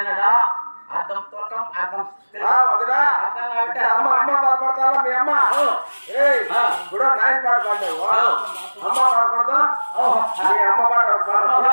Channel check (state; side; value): inverted; both; correlation -1.00